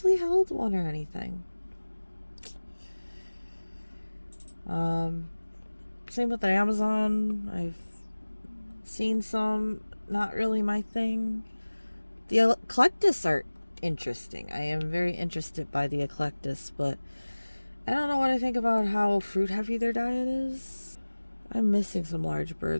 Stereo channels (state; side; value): inverted; both; correlation -1.00